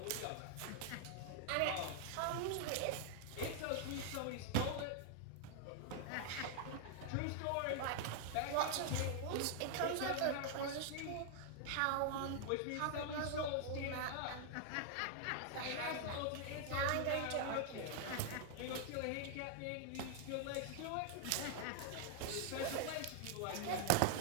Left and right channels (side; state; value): both; different; correlation 0.00